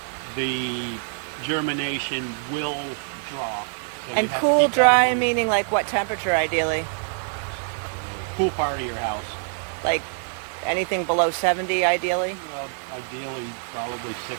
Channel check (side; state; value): left; silent; digital silence